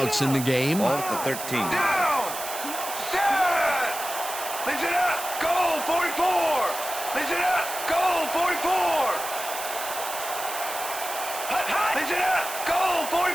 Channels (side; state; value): right; noise; hiss, 8 dB below the sound